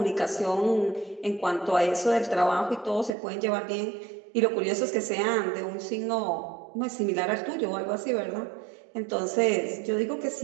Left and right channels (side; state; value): left; drops out; at 3.1 s